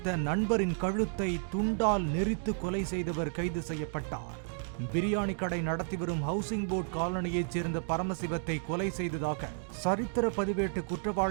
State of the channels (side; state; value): left; silent; 56 dB below the other